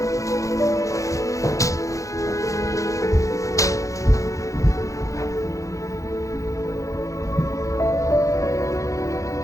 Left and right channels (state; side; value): late; right; 0.15 ms